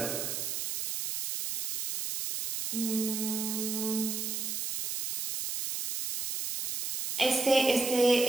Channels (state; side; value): noise; right; hiss, 3 dB below the sound